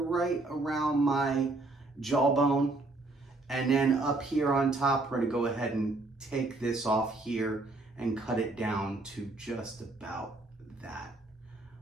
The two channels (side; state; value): left; quieter; 3.1 dB